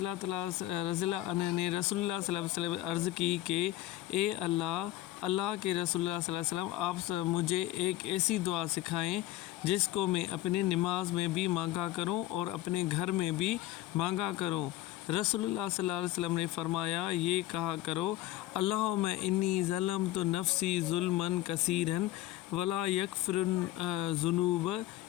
عنہ نے رسول اللہ صلی اللہ علیہ وسلم عرض کی کہ اے اللہ کے رسول اللہ صلی اللہ علیہ وسلم، آپ مجھے ایک ایسی دعا سکھائیں جس کو میں اپنی نماز میں بھی مانگا کروں اور اپنے گھر میں بھی مانگا کروں۔ رسول اللہ صلی اللہ علیہ وسلم نے فرمایا، یہ کہا کرو، اللہم انی ظلمت نفسی ظلما کثیرا ولا یغفر الذنوب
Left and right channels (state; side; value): quieter; right; 15.2 dB